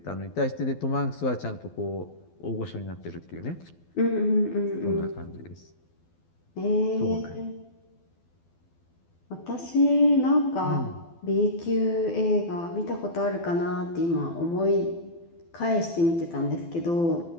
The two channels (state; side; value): late; right; 12 ms